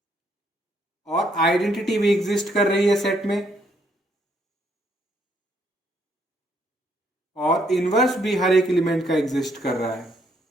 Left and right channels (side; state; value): both; normal; correlation 0.71